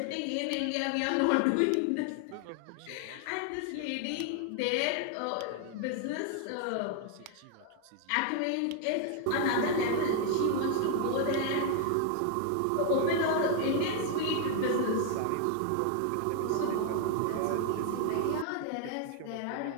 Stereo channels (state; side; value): different; both; correlation 0.00